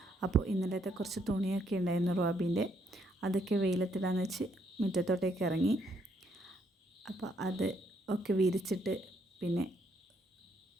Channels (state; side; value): normal; both; correlation 0.72